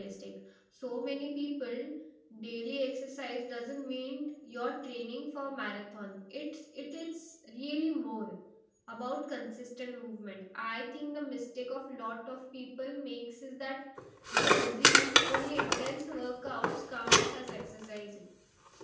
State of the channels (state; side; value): identical; both; correlation 1.00